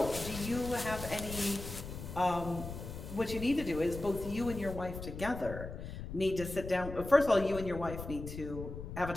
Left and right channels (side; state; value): left; noise; rumble, 9 dB below the sound